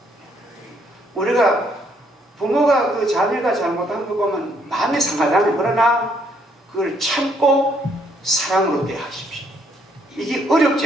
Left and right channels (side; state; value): both; normal; correlation 0.69